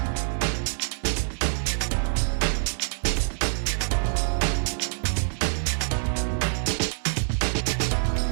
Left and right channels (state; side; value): silent; left; 61 dB below the other